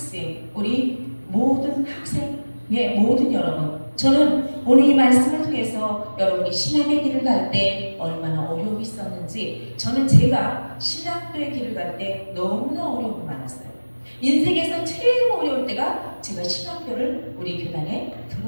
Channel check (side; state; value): both; inverted; correlation -1.00